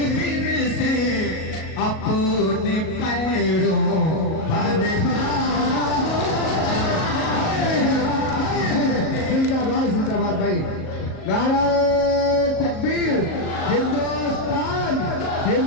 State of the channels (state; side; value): late; right; 38 ms